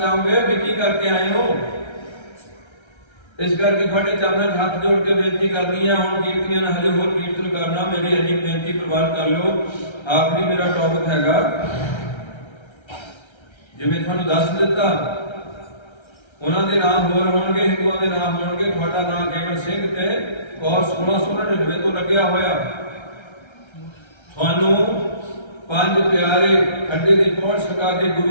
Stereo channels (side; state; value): right; late; 1.3 ms